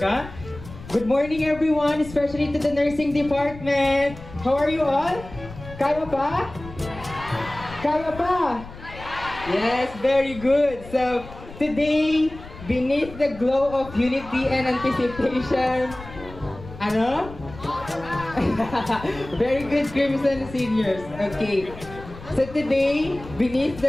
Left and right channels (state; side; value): noise; left; rumble, 15 dB below the sound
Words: Good morning, everyone, especially to the nursing department. How are you all? Kaya pa? Kaya pa? Yes, very good. So, today, beneath the glow of unity and anticipation, ano? Very good, Crimson Seniors. Okay. So today, beneath